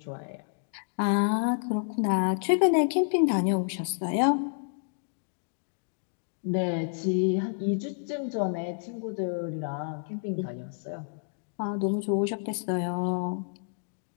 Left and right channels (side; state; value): right; silent; digital silence